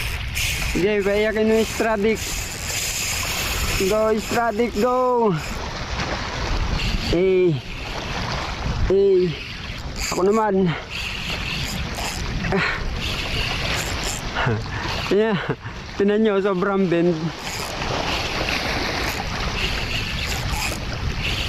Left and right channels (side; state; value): both; identical; correlation 1.00